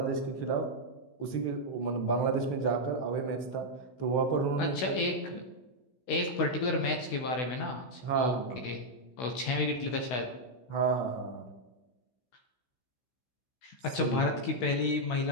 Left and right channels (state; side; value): late; right; 16 ms